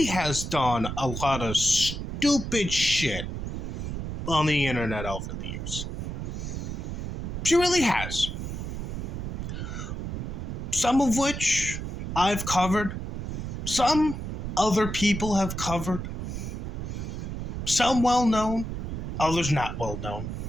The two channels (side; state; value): right; noise; rumble, 5 dB below the sound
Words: has done a lot of stupid shit on the internet over the years. She really has. Some of which I've covered. Some other people have covered. Some well known, others not well known.